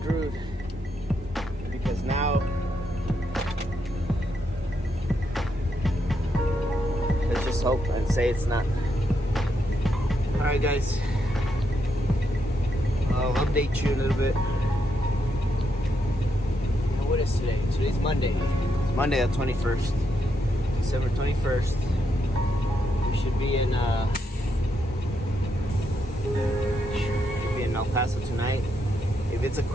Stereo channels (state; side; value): normal; both; correlation 0.79